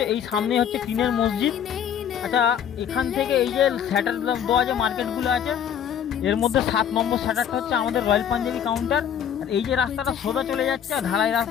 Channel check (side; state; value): right; quieter; 8.8 dB